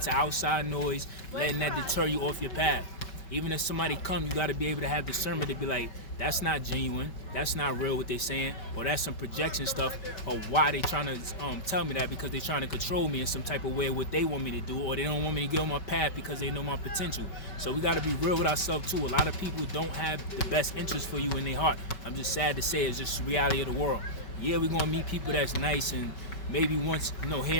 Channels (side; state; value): right; late; 5.1 ms